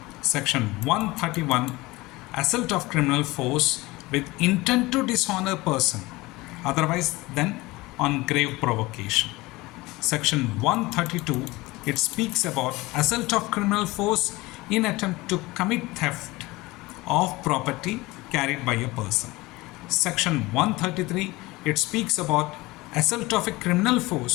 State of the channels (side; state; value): right; quieter; 21.0 dB